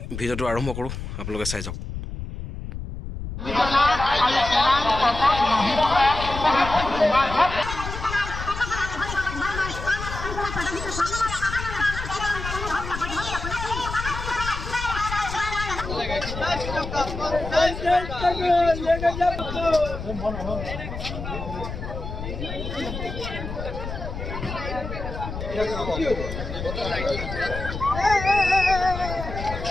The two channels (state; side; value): noise; left; rumble, 7 dB below the sound